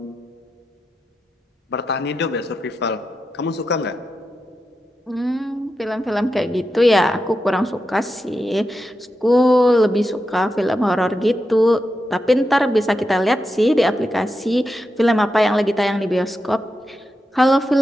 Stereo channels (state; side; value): normal; both; correlation 0.88